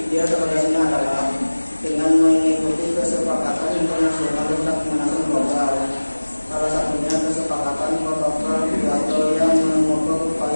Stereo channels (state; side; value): inverted; both; correlation -1.00